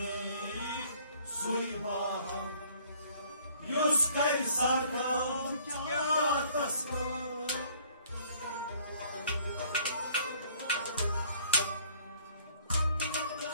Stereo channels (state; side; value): inverted; both; correlation -0.58